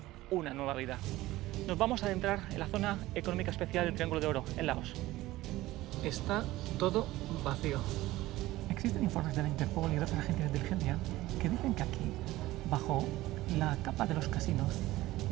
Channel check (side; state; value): left; quieter; 17.2 dB